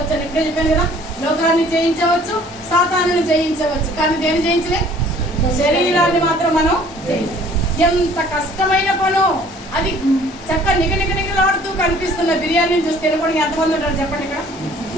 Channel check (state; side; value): normal; both; correlation 0.54